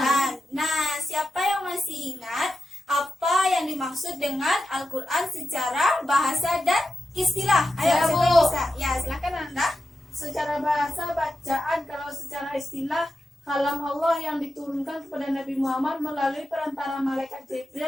Nah, siapa yang masih ingat apa yang dimaksud dengan Al-Quran secara bahasa dan istilah? Ayo, Saya, siapa Bu. yang bisa? Ya, silakan Ananda. Secara bahasa bacaan, kalau secara istilah kalam Allah yang diturunkan kepada Nabi Muhammad melalui perantara malaikat Jibril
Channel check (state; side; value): normal; both; correlation 0.90